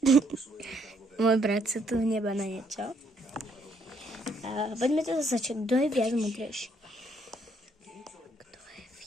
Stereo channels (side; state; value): both; normal; correlation 0.70